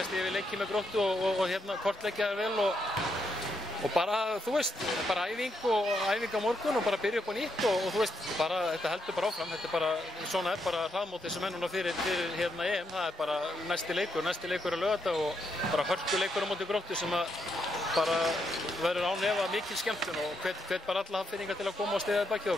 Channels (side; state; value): both; normal; correlation 0.80